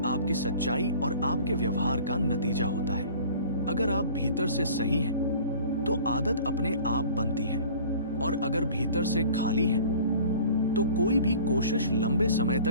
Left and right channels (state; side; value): inverted; both; correlation -0.46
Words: आपकी सच्चाई और आपके व्यवहार का नतीजा होता है। अगर आप भीतर से सही हैं, तो आदत अपने आप बनती है, और अगर भीतर से खाली हैं, तो कोई भी कोशिश लंबे समय